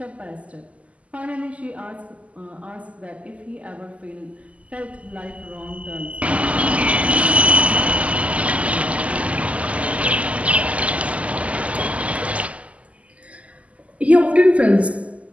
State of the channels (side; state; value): left; late; 0.067 ms